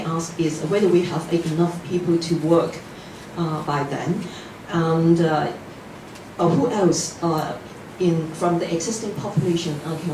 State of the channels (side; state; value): both; identical; correlation 1.00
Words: ask is whether we have enough people to work by then, and who else from the existing population